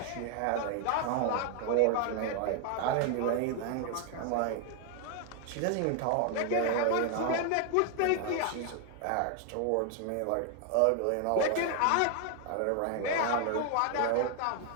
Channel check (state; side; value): different; both; correlation 0.00